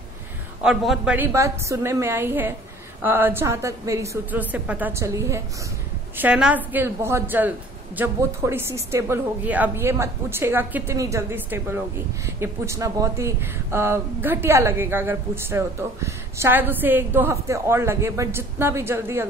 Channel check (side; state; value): both; normal; correlation 0.50